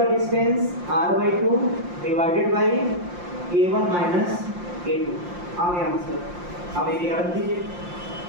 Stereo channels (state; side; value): late; left; 5.7 ms